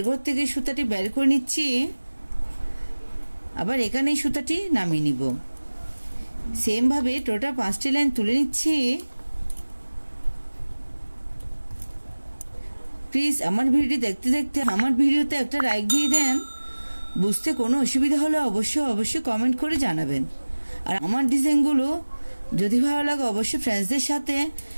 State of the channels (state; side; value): inverted; both; correlation -1.00